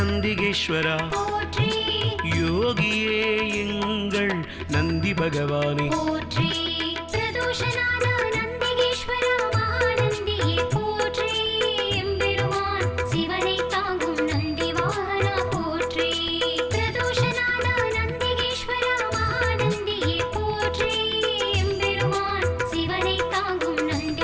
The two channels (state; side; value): identical; both; correlation 1.00